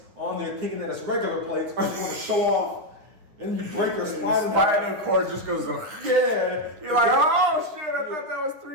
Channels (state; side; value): late; left; 9.8 ms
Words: on there thinking that it's regular plates because you want to show off, and you break your spinal cord just goes, yeah. You're like, oh shit, I thought that was